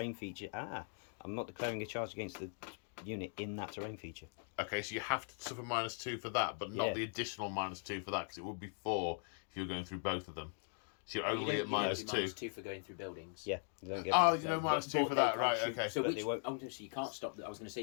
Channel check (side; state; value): right; silent; 51 dB below the other